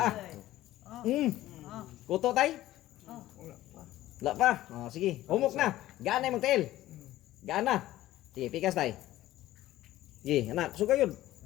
Kuto tay? Wala pa. Sige, humok na. Gaan na yung tail. Gaan na. Sige, pikas tay. Sige, anak, suga yun.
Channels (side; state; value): right; quieter; 15.0 dB